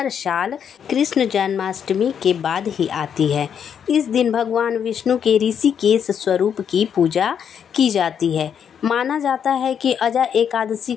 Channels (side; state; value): right; quieter; 8.0 dB